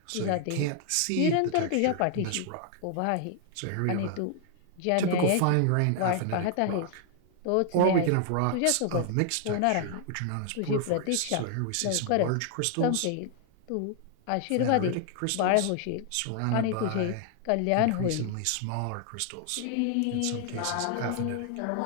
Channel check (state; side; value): different; both; correlation 0.00